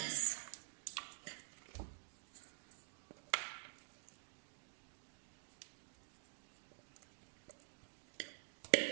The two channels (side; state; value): left; silent; digital silence